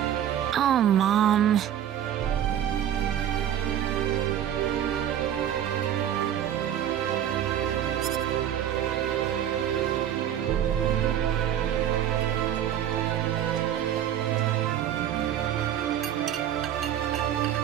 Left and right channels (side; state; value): left; quieter; 10.5 dB